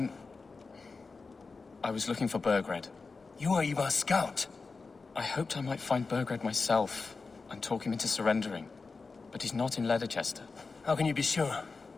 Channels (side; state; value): right; quieter; 4.3 dB